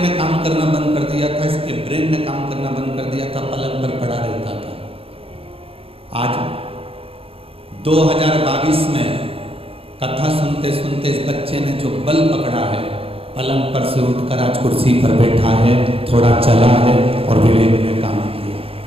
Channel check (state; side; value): late; left; 0.27 ms